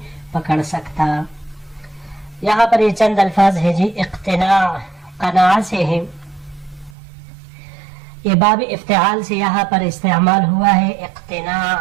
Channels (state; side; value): drops out; left; at 7.0 s